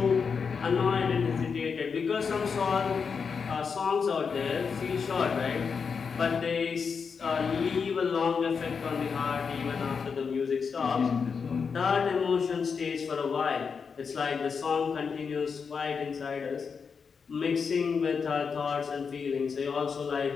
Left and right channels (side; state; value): right; quieter; 5.8 dB